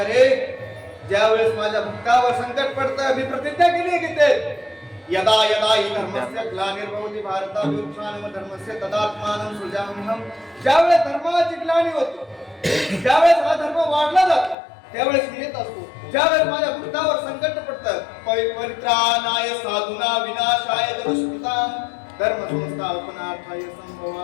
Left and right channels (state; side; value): drops out; right; at 14.6 s